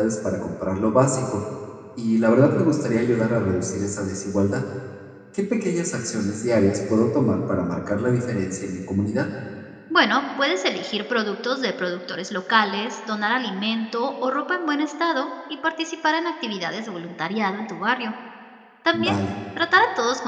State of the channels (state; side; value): identical; both; correlation 1.00